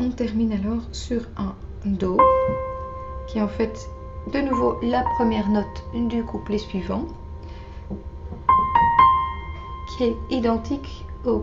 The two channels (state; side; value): identical; both; correlation 1.00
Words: termine alors sur un Do, qui est en fait de nouveau la première note du couplet suivant, qui est identique au